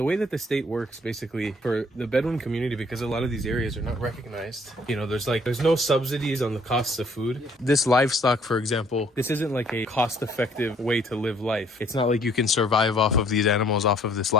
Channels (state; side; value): normal; both; correlation 0.61